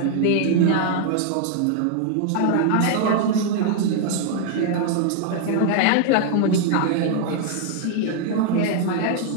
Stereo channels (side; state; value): both; different; correlation 0.00